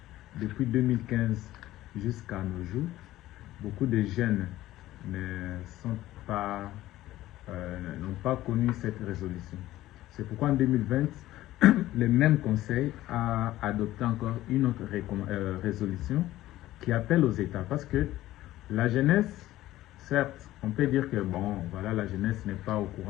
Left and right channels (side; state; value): right; quieter; 15.4 dB